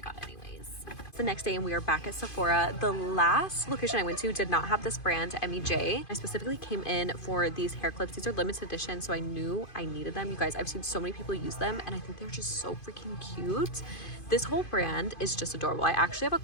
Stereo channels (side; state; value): right; late; 2.5 ms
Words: got anyways. It's the next day and we are back at Sephora. The last location I went to did not have this brand, MEJ. I specifically came in for these hair clips. These are limited edition, so I knew I needed them. You guys, I've seen so many people use them and I think they're just so freaking cute. This whole brand is just adorable. I actually have a